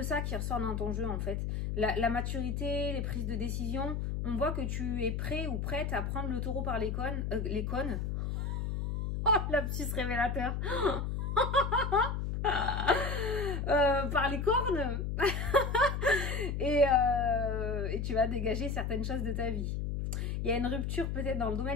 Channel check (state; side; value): noise; left; hum, 2 dB below the sound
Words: ça qui ressort dans ton jeu en fait. La maturité, les prises de décision, on voit que tu es prêt ou prête à prendre le taureau par les cônes. Oh, lapsus révélateur. Par les cornes. et tu vas dégager certaines choses de ta vie. Il y a une rupture peut-être dans le